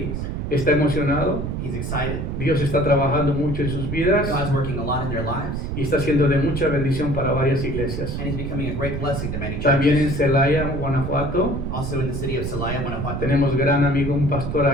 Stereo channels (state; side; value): noise; right; rumble, 3 dB below the sound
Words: Está emocionado. He's excited. Dios está trabajando mucho en sus vidas God's working a lot in their lives, y está siendo de mucha bendición para varias iglesias. and he's becoming a great blessing to many También en churches. Celaya, Guanajuato, Also in the city of Celaya, Guanajuato, tenemos gran amigo, un pastor